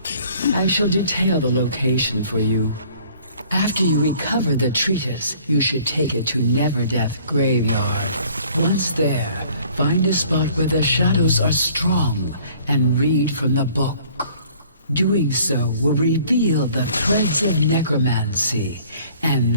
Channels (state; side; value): inverted; both; correlation -0.55